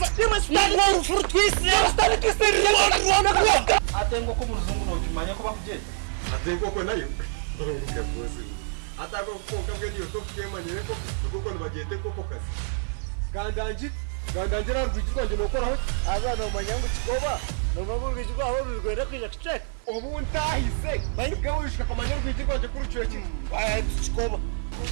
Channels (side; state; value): left; silent; 57 dB below the other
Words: fruit twist debo stari twist atengo ko muzungu no kimanya ko bakugenda atengo ko nayo uruka bose atako ko kabwe niyo to kemanyere ko kuko nibagende ko kazi gandangira rwigirwa nje nokoraho azana umanyango kikoba nobabu rwigirwa aho rwigwera kwija kitek ubu ntahise bayibwe wishika kamanyere rwigirwa nje kuri cyo kintu aya kikoba